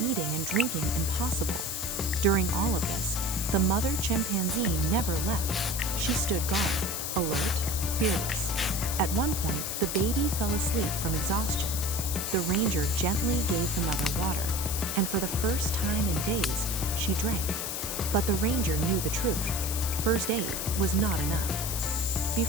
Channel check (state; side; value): noise; left; hiss, 3 dB below the sound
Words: and drinking impossible. During all of this, the mother chimpanzee never left. She stood guard, alert, fearless. At one point, the baby fell asleep from exhaustion. The ranger gently gave the mother water, and for the first time in days, she drank. But the ranger knew the truth. First aid was not enough.